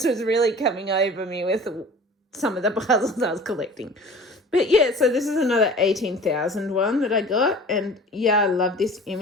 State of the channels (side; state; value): both; normal; correlation 0.43